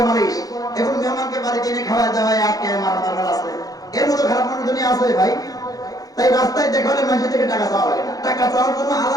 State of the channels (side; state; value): right; late; 0.18 ms